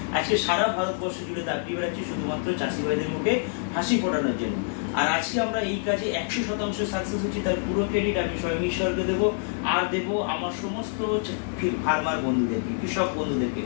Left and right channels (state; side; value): silent; right; digital silence